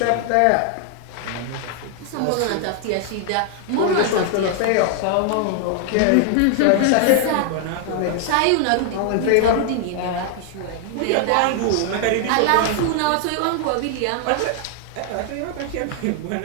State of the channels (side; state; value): both; different; correlation 0.00